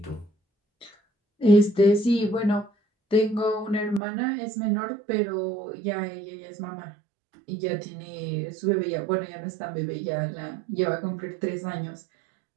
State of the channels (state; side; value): drops out; left; at 4.0 s